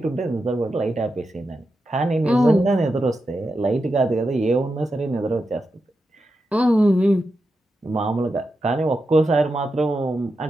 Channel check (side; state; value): both; normal; correlation 0.88